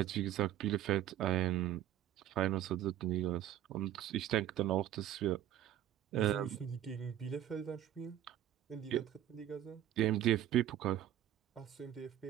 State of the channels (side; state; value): left; quieter; 11.9 dB